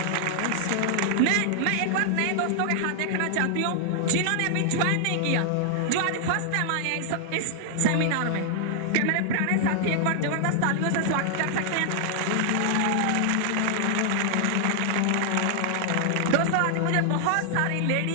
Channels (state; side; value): different; both; correlation 0.00